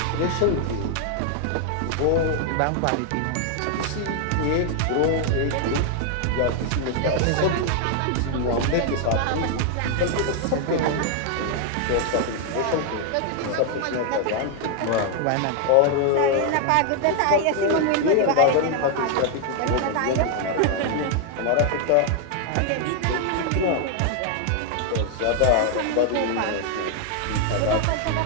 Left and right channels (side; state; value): both; different; correlation 0.00